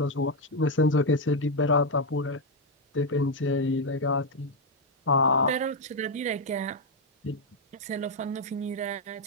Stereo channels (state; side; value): normal; both; correlation 0.03